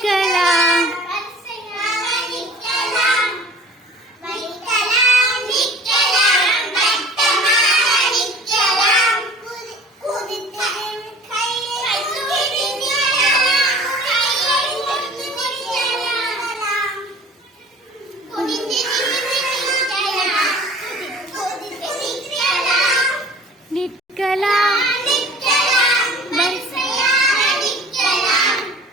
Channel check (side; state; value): both; normal; correlation 0.46